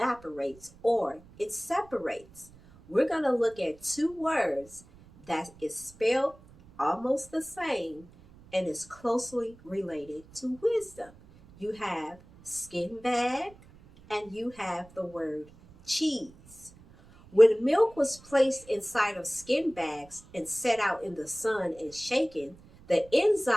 or it separates. We're going to look at two words that is spelled almost the same and is closely related to wisdom. You have skin bag and you have the word cheese. When milk was placed inside of skin bags and set out in the sun and shaken, the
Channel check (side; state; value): right; noise; rumble, 24 dB below the sound